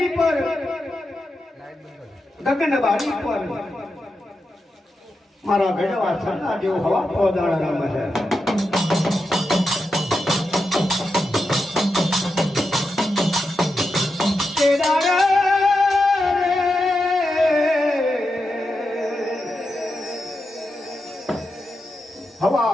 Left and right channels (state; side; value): normal; both; correlation 0.88